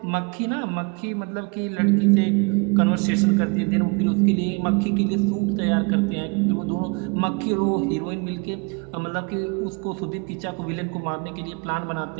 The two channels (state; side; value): quieter; left; 31.7 dB